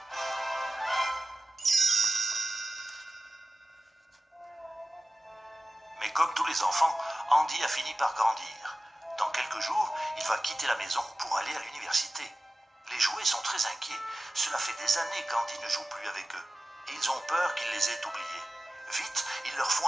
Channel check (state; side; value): normal; both; correlation 0.96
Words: Mais comme tous les enfants, Andy a fini par grandir. Dans quelques jours, il va quitter la maison pour aller à l'université. Les jouets sont très inquiets. Cela fait des années qu'Andy ne joue plus avec eux. Et ils ont peur qu'il les ait oubliés. Vite, il leur faut